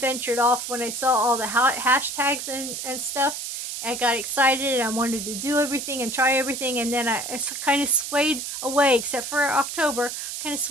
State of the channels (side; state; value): right; noise; hiss, 6 dB below the sound